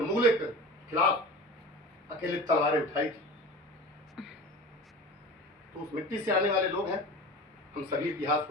मुगलों के खिलाफ अकेले तलवारें उठाई थी, तो उस मिट्टी से आने वाले लोग हैं। हम सभी इतिहास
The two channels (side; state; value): both; normal; correlation 0.35